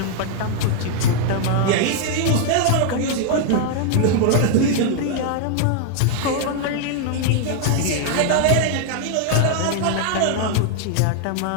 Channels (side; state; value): both; different; correlation 0.00